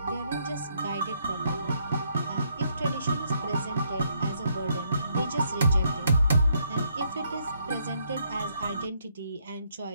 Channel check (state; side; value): inverted; both; correlation -0.73